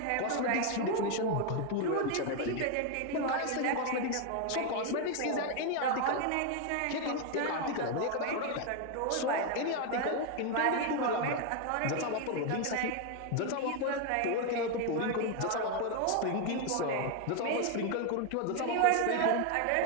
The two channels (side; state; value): both; different; correlation 0.01